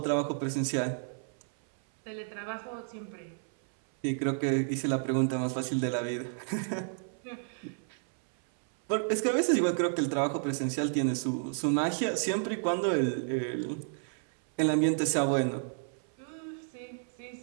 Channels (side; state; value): left; silent; 57 dB below the other